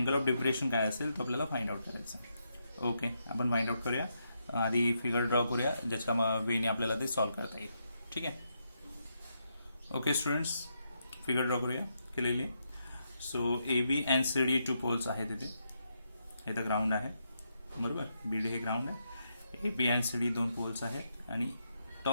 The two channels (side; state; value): both; inverted; correlation -0.81